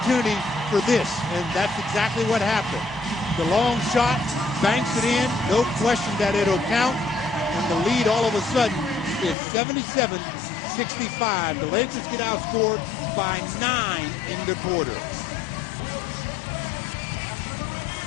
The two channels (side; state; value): right; drops out; at 9.3 s